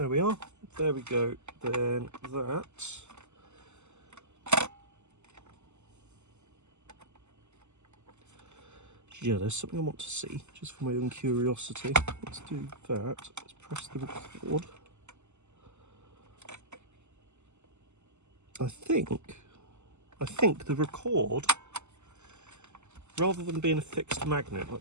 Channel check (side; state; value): left; late; 0.83 ms